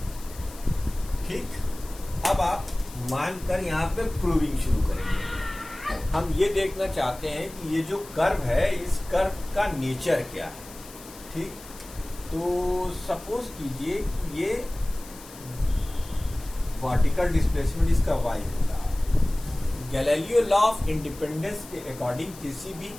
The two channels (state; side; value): noise; left; hiss, 18 dB below the sound